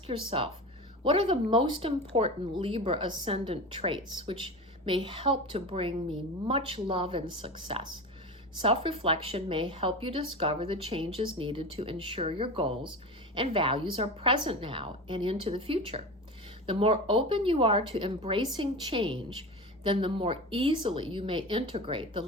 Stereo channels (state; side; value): normal; both; correlation 0.28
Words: yourself, what are the most important Libra ascendant traits which may help to bring me much love and success? Self-reflection may help you discover the changes needed to ensure your goals and values are present now and into the future. The more open you are to embracing change, then the more easily you may integrate the